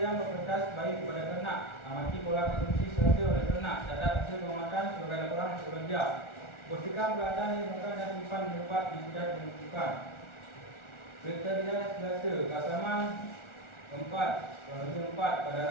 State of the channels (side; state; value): right; late; 1.4 ms